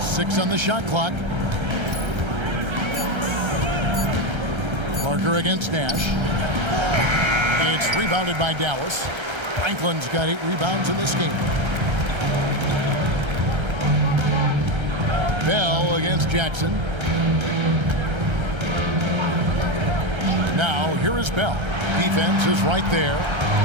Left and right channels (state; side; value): late; left; 1.3 ms